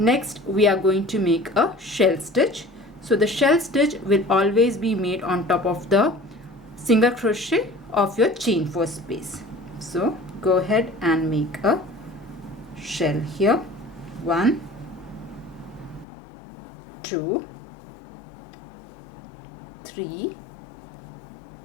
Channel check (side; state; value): right; drops out; at 16.1 s